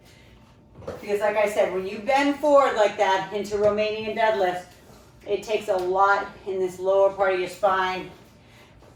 Because like I said, when you bend forward like that into Romanian deadlifts, it takes a lot in this lower part of your spine.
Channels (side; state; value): both; identical; correlation 1.00